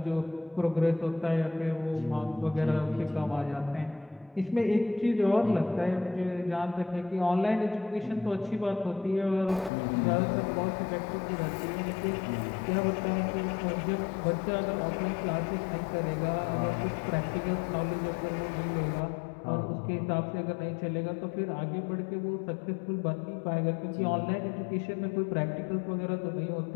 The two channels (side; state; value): right; drops out; at 9.7 s